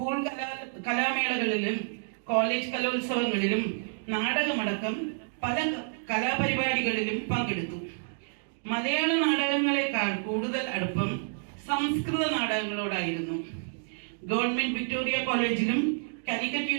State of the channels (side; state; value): left; silent; digital silence